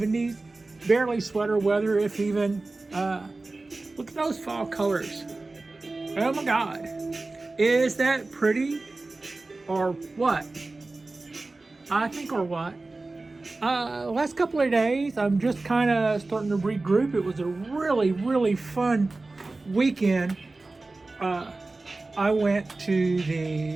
Barely sweater weather, if even. Look at those fall colors. Oh my God. Is that pretty? Or what? I think or what? Last couple of days, I'm just kind of starting to regroup. It was a really fun weekend. I went to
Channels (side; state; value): left; quieter; 3.3 dB